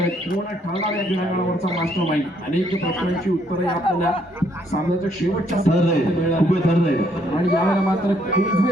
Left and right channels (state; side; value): normal; both; correlation 0.69